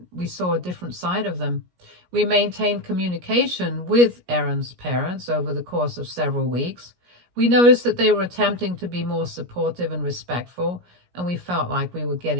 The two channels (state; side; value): late; left; 17 ms